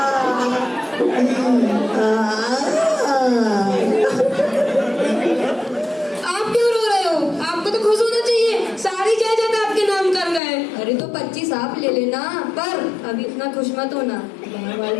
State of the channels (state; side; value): drops out; right; at 10.4 s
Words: आप क्यों रो रहे हो? आपको तो खुश होना चाहिए, सारी जायदाद आपके नाम कर गए। अरे तो 25 आप ले लेना, पर अभी इतना खुश मत होना, बाहर वाले